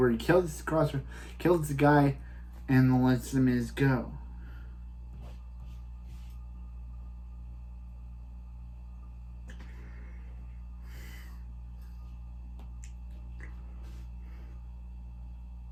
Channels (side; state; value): both; identical; correlation 1.00